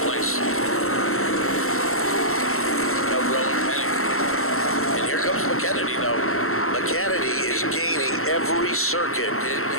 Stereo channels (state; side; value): late; right; 0.62 ms